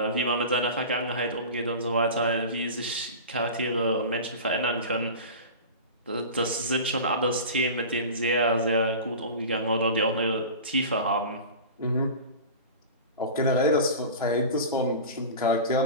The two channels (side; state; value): both; inverted; correlation -0.32